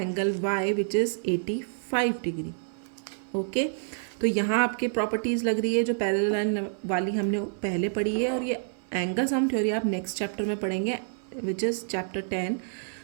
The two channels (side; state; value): left; silent; 59 dB below the other